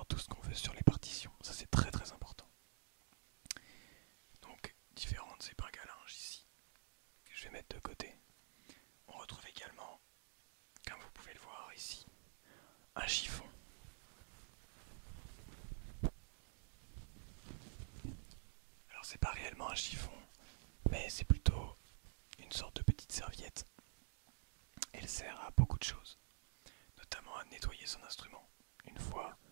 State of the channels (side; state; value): left; silent; digital silence